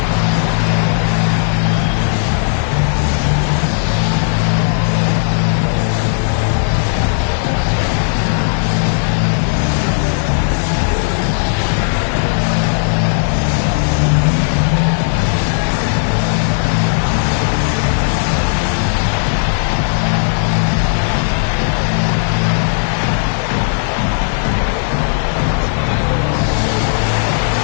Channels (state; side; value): silent; right; 70 dB below the other